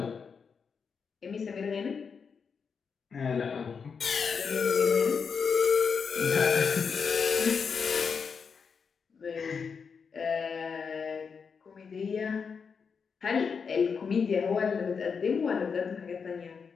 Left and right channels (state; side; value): quieter; right; 5.9 dB